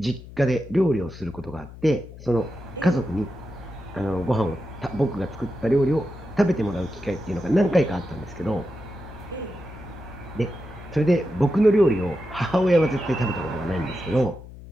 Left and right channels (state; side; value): noise; left; hum, 16 dB below the sound